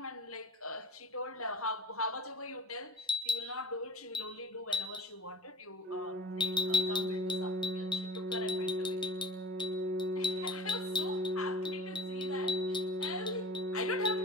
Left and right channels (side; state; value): both; normal; correlation 0.40